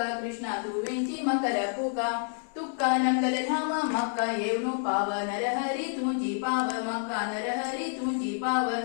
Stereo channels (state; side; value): silent; right; 59 dB below the other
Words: कृष्णा तुवेंची मकर फुका तुका नकल धाम मक्का येवनु पाव नरहरी तुझी पाव मक्का नरहरी तुझी पाव